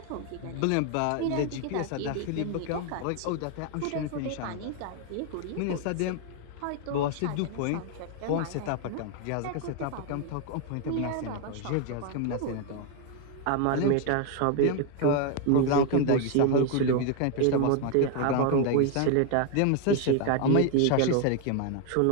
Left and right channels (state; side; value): different; both; correlation 0.01